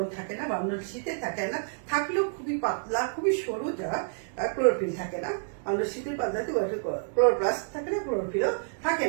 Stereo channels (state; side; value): silent; left; 59 dB below the other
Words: থাকে না, বান্ডল শীতে থাকে না, থাকলেও খুবই পাতলা, খুবই সরু, যা ক্লোরোফিল থাকে না। বান্ডল শীতের পাতলাতে ক্লোরোপ্লাস্ট থাকে না, ক্লোরোফিলও থাকে